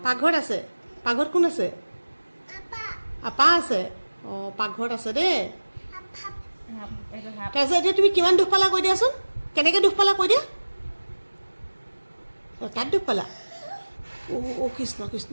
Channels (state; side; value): inverted; both; correlation -1.00